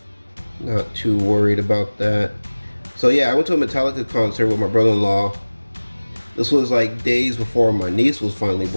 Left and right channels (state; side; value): inverted; both; correlation -1.00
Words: Not too worried about that. So yeah, I went to a Metallica concert with my brother-in-law. This was like days before my niece was finally